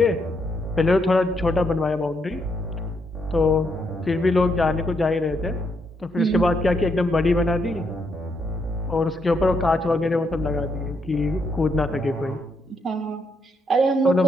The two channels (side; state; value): both; normal; correlation 0.77